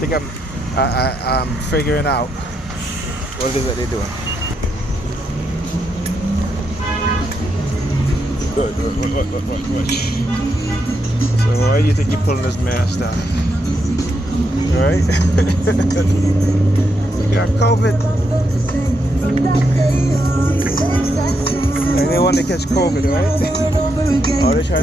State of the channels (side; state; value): both; normal; correlation 0.81